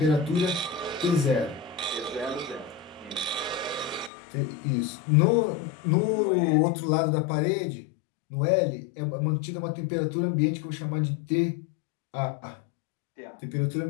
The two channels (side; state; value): right; drops out; at 4.1 s